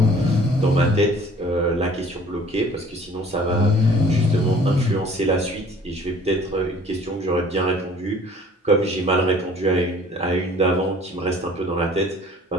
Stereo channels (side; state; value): both; normal; correlation 0.52